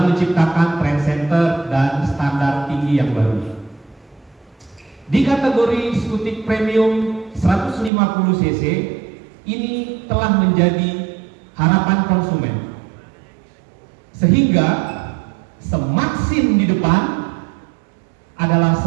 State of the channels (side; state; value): left; drops out; at 7.9 s